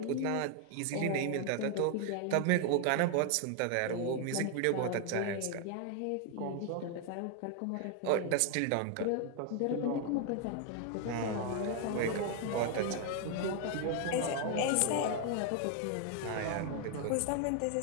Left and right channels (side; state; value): both; different; correlation 0.01